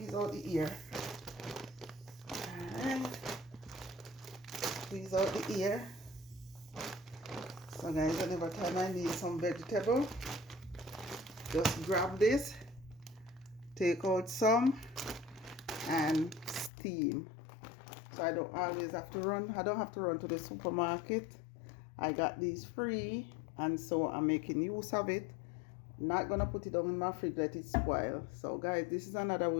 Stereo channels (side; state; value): right; drops out; at 16.7 s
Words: out the ear. Alright. Squeeze out the ear. So guys, whenever time I need some vegetable, just grab this, take out some, and steam. So I don't always have to run. I don't have to run to the supermarket. I got these free, and so I'm making use of it. Not gonna put it down in my fridge, let it spoil. So guys, this is another